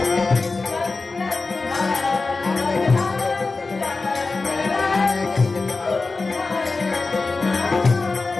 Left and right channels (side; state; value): right; quieter; 3.8 dB